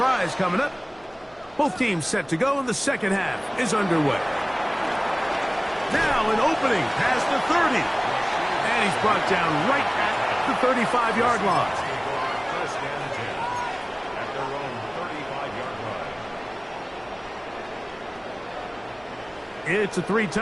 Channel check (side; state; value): right; noise; hum, 28 dB below the sound